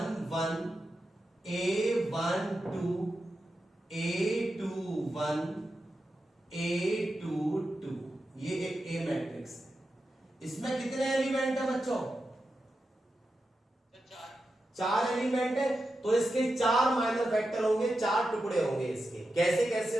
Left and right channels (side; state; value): both; normal; correlation 0.89